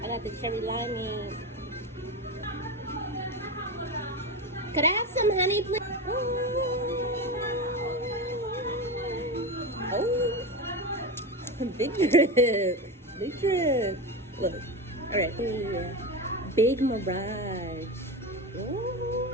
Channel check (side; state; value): both; normal; correlation 0.20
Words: I got the cherry limeade. Could I have some honey, please? Oh, big drip. Big drip. Look. All right. Yeah. Big Mirage.